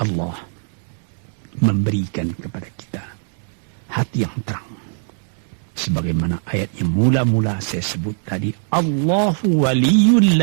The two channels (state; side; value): silent; left; 65 dB below the other